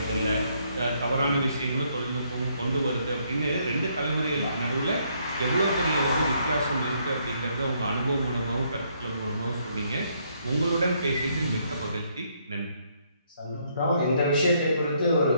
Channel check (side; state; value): both; inverted; correlation -0.71